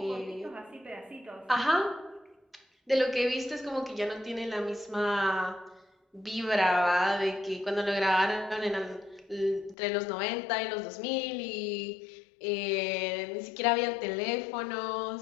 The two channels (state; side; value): drops out; right; at 9.8 s